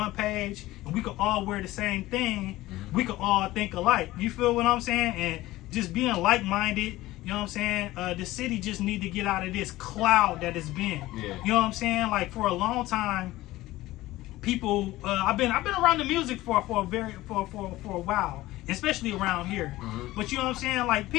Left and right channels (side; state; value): right; quieter; 17.3 dB